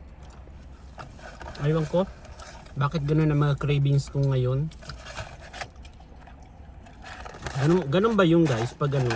Aywan ko, bakit ganun ang mga cravings ko ngayon? Ganun ba yung guys, pag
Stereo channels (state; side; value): identical; both; correlation 1.00